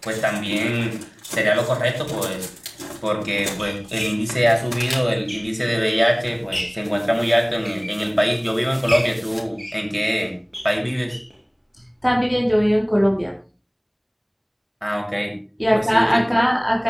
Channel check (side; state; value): both; identical; correlation 1.00